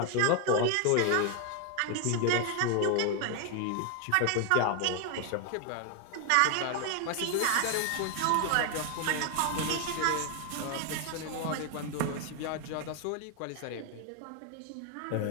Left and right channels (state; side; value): different; both; correlation 0.01